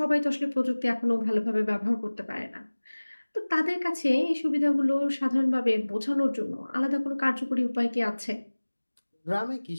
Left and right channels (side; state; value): both; inverted; correlation -1.00